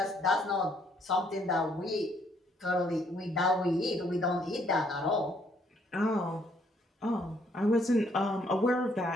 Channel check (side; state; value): both; normal; correlation 0.67